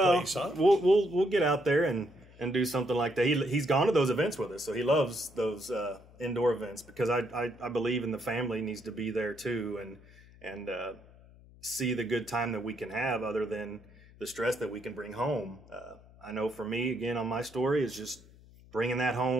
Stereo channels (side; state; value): left; noise; hum, 23 dB below the sound